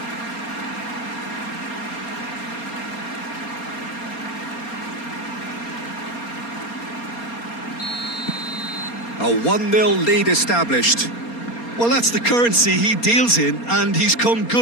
A 1-0 lead established. Well, that's the currency he deals in, and he's come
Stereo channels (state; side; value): late; right; 4.3 ms